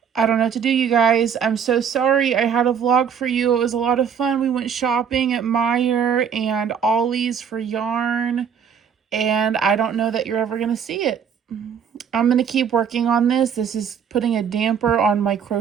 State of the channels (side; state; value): left; quieter; 7.4 dB